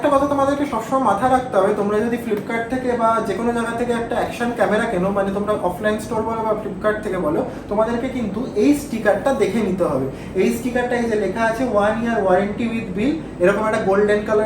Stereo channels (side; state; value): both; identical; correlation 1.00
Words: কথা তোমাদেরকে সবসময় মাথায় রাখতে হবে, তোমরা যদি ফ্লিপকার্ট থেকে বা যে কোনো জায়গা থেকে একটা অ্যাকশন ক্যামেরা কেনো, মানে তোমরা অফলাইন স্টোর বলো বা ফ্লিপকার্ট থেকে বলো, তোমাদেরকে কিন্তু এই স্টিকারটা দেখে নিতে হবে। এই স্টিকারটা এই যে লেখা আছে 1 year ওয়ারেন্টি উইথ বিল, এরকম একটা গোল্ডেন